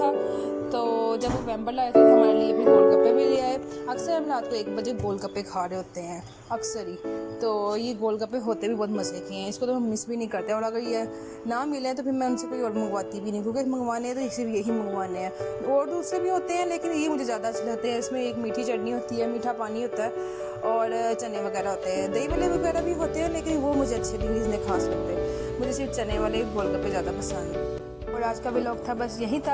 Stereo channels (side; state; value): both; identical; correlation 1.00